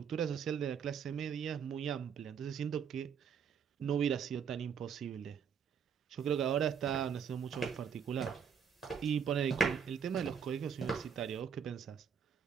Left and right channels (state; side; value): quieter; left; 7.1 dB